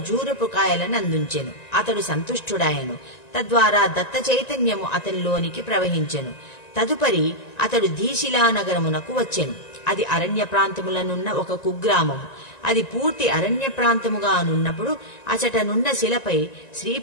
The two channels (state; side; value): late; right; 1.9 ms